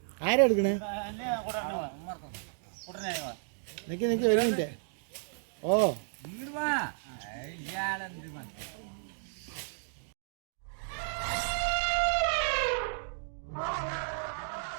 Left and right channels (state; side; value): silent; left; digital silence